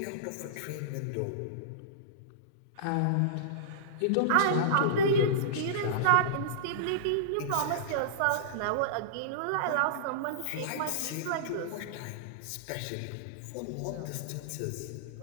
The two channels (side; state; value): both; different; correlation -0.02